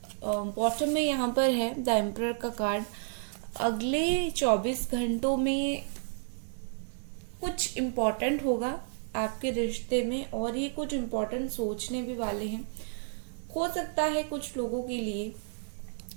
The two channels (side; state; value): left; silent; 57 dB below the other